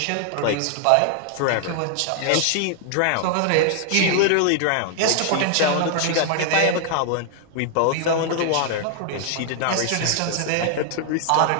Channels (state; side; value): different; both; correlation 0.00